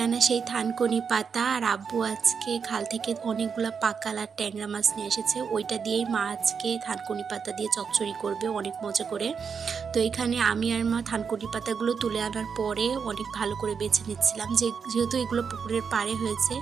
আনা সেই থানকুনি পাতা আর আব্বু আজকে খাল থেকে অনেকগুলা পাকাল আর ট্যাংরা মাছ নিয়ে এসেছে। ওইটা দিয়েই মা আজকে থানকুনি পাতা দিয়ে চচ্চড়ি করবে অনেক মজা করে। তো এখানে আমি আর মা থানকুনি পাতাগুলো তুলে আনার পরে অনেক ভালো করে বেছে নিচ্ছিলাম, যেহেতু এগুলো পুকুরের পাড়ে হয়েছে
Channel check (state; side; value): quieter; left; 6.2 dB